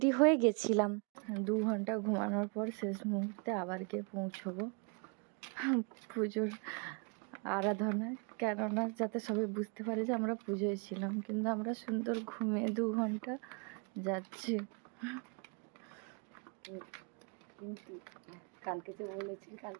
হয়ে গেছিলাম। ২ ঘন্টা ঘুমানোর পর শেষ মুহূর্তে আবার গিয়ে পৌঁছবো পুজোর আরাধনায়, কেননা যাতে সবাই বুঝতে পারে যে আমরা পুজোয় ছিলাম, কিন্তু আমরা সুন্দর ঘুমিয়ে ২ ঘন্টা যাচ্ছি। কিন্তু কালকে যে বলেছি,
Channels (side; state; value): left; quieter; 35.6 dB